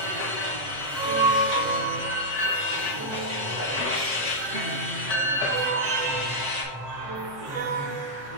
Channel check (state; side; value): late; left; 7.6 ms